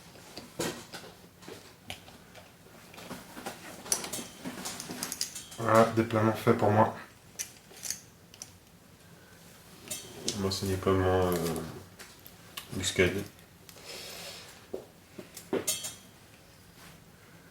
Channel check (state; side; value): identical; both; correlation 1.00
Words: Voilà, déploiement fait pour moi. Moi, c'est déploiement muscade. Un